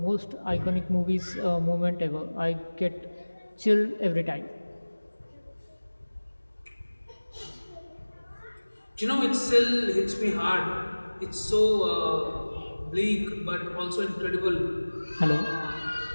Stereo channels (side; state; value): both; inverted; correlation -1.00